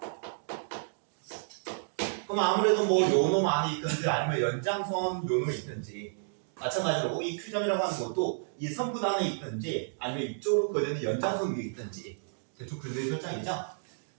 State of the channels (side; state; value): left; silent; digital silence